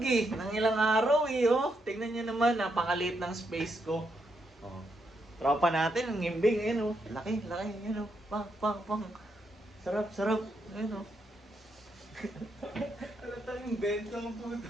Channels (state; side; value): normal; both; correlation 0.80